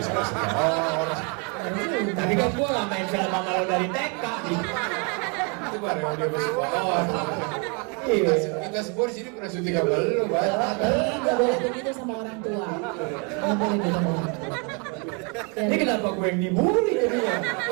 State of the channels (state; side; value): quieter; left; 34.6 dB